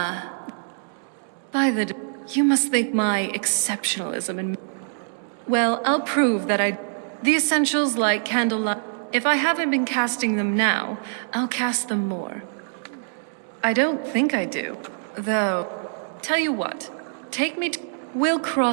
You must think my exceptionalism and... Well, I'll prove that the essentials like candlelight... If I haven't been casting them now, I'll cast them more. I don't think I do, though. Tell you what, take me to... We'll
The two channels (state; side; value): silent; left; digital silence